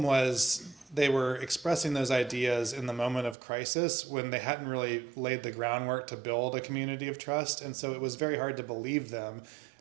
was they were expressing those ideas in the moment of crisis when they hadn't really laid the groundwork to build a community of trust, and so it was very hard to believe them.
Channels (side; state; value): left; drops out; at 3.4 s